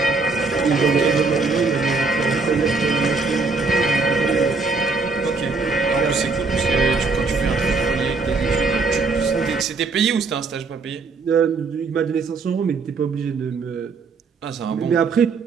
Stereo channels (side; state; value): left; quieter; 4.2 dB